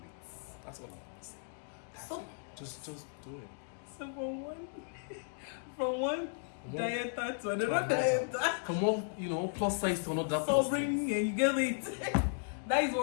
That's all I'm saying. Just do it. So from one dieter to another dieter. From one, plus size to another. So bring you get it. That is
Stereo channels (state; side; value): silent; right; digital silence